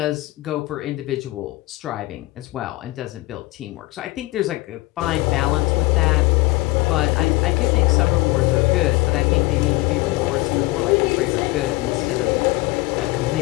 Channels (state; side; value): quieter; right; 20.8 dB